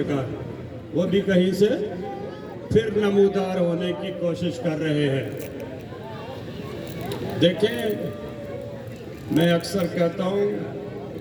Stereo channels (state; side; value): identical; both; correlation 1.00